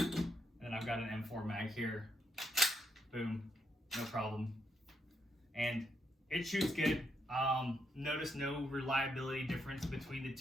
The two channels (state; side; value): normal; both; correlation 0.78